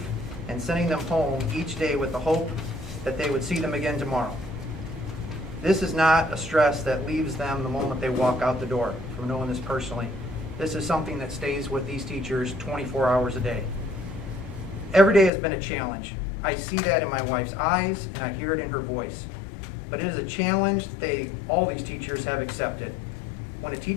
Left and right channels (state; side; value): drops out; right; at 15.3 s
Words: and sending them home each day with the hope that they would see them again tomorrow. This is not a stress that leaves them the moment they walk out the door, from knowing this personally. This is something that stays with these teachers 24 hours a day. Every day has been a challenge. I see that in my wife's eyes and I hear it in her voice. But it is a challenge that all these teachers have accepted. When a